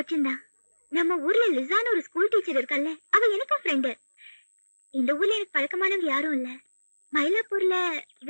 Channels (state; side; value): inverted; both; correlation -1.00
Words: தான். நம்ம ஊர்ல லிசான்னு ஒரு ஸ்கூல் டீச்சர் இருக்கல்ல, அவ எனக்கும் ஃப்ரெண்டு. இந்த ஊர்ல எனக்கு பழக்கமானவங்க யாரும் இல்ல. மயிலாப்பூர்ல